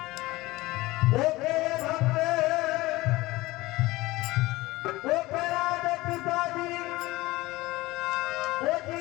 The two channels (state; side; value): quieter; right; 19.6 dB